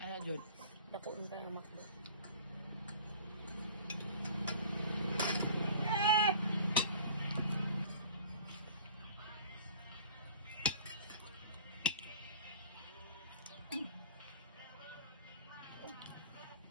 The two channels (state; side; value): inverted; both; correlation -0.47